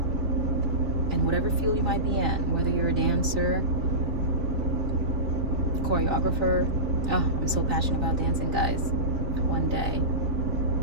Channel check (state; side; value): late; left; 4.1 ms